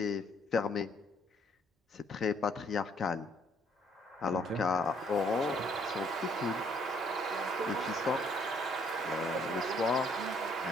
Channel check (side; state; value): both; normal; correlation 0.65